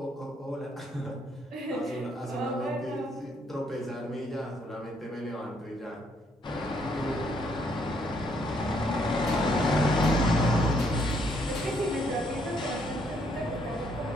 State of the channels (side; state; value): both; normal; correlation 0.70